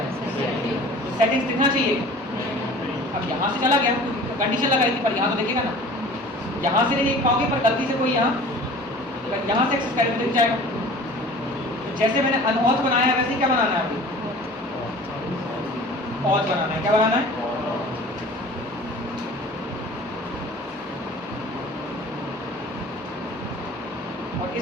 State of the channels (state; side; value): normal; both; correlation 0.44